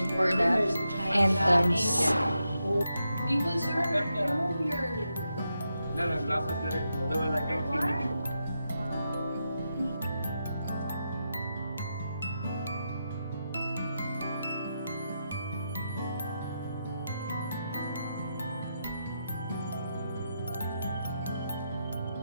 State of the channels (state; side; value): inverted; both; correlation -0.85